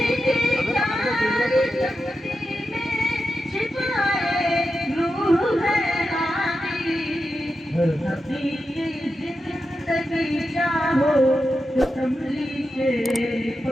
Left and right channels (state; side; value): normal; both; correlation 0.89